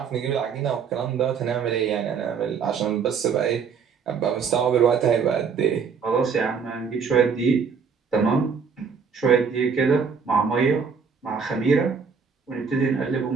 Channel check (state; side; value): quieter; left; 6.1 dB